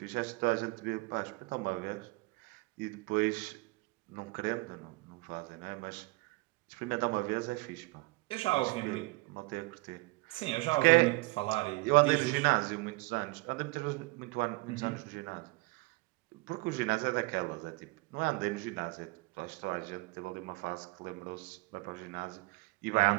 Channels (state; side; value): quieter; left; 24.6 dB